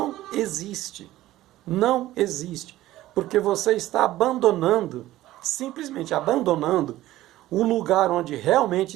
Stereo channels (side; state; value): left; quieter; 15.5 dB